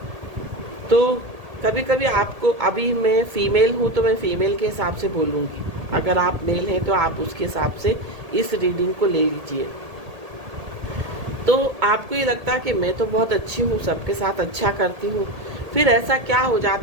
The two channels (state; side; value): late; left; 1.8 ms